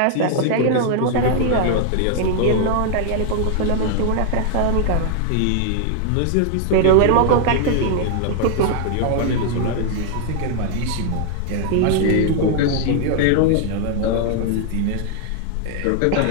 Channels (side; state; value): both; different; correlation 0.00